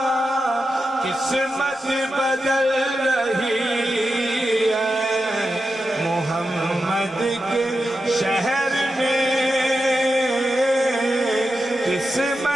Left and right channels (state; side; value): normal; both; correlation 0.89